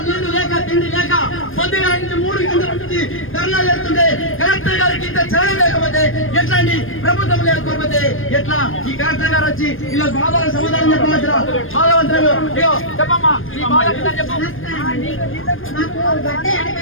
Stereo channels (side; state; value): right; late; 0.59 ms